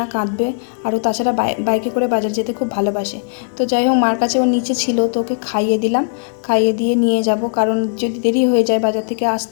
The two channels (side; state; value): right; silent; 68 dB below the other